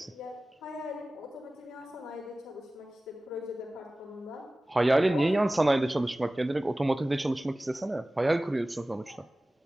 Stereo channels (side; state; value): both; normal; correlation 0.97